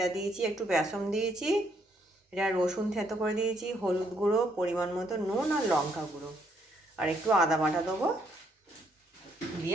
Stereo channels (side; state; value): both; normal; correlation 0.71